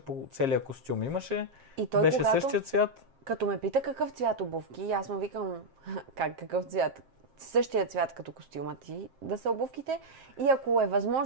целия костюм. Имаше, и той, беше същия цвят. Като ме пита какъв цвят обувки, аз му викам, какъв цвят? Същия цвят като костюма ти да са обувките. И ако е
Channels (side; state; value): left; late; 7.6 ms